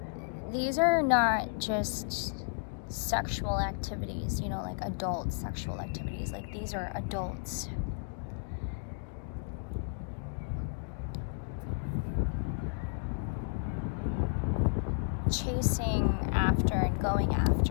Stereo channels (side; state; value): right; silent; digital silence